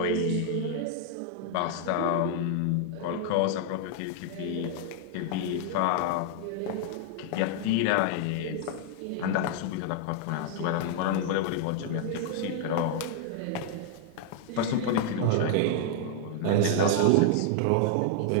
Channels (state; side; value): different; both; correlation 0.00